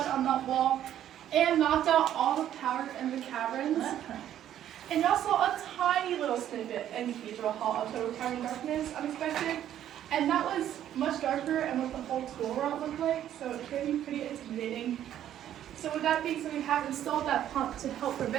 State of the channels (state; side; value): quieter; left; 11.2 dB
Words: on that wall and knocked out all the power in the caverns. And y'all saw a tiny little snippet in Cathedral Hall of total tiny darkness, unexpected. And that was much darker and what the whole tool route looked like, so it can be pretty intimidating. So with that being said, we have installed that pump to help